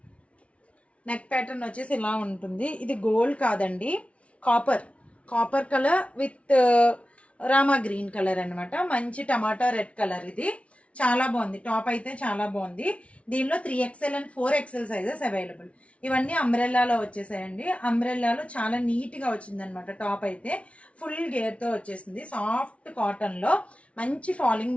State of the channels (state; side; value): late; right; 0.063 ms